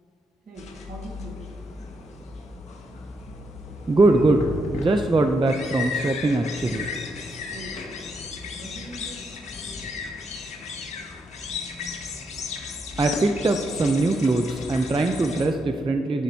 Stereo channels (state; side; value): normal; both; correlation 0.80